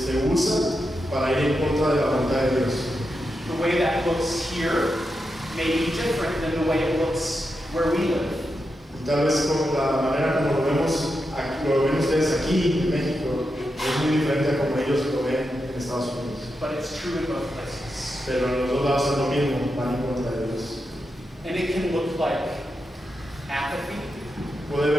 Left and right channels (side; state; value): both; normal; correlation 0.87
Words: usa para ir en contra de la voluntad de Dios. The way that looks here may be different than the way it looks where we live. Y tal vez como la manera como lo ven ustedes aquí en México es muy diferente a como ellos lo ven en Estados Unidos. But it's true in both places. Pero en los dos lados es lo mismo, van en contra de Dios. And it can look like apathy. Puede